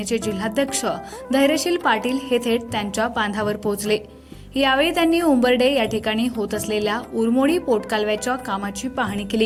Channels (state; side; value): identical; both; correlation 1.00